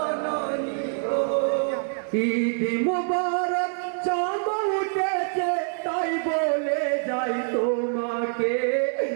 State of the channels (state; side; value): silent; left; 61 dB below the other